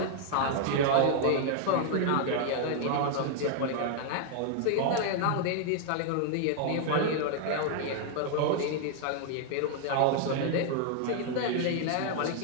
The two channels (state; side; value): different; both; correlation 0.00